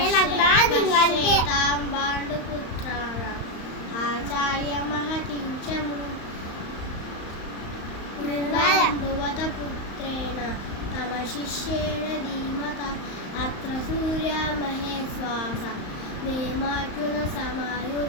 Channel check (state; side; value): late; right; 35 ms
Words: పాండుపుత్రాణం ఆచార్య మహతిం చ భువత పుత్రేణ తమ శిష్యేణ ధీమత అత్ర సూర్యా మహేశ్వాస నేమార్జున